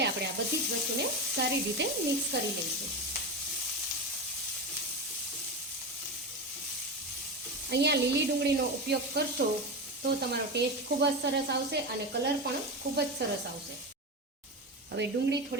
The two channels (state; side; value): normal; both; correlation 0.20